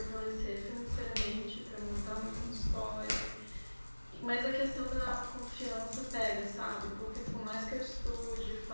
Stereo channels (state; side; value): inverted; both; correlation -1.00